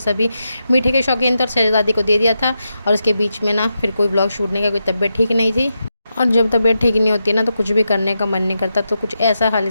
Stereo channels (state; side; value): inverted; both; correlation -0.87